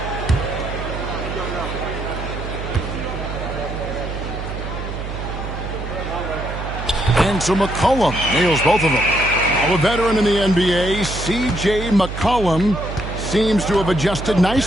And so McCollum nails both of them. A veteran in the NBA, C.J. McCollum, seems to have adjusted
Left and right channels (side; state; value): right; noise; hum, 7 dB below the sound